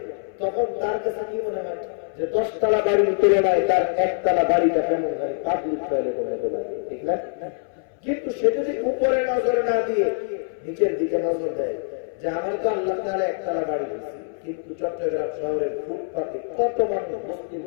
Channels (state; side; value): silent; right; 60 dB below the other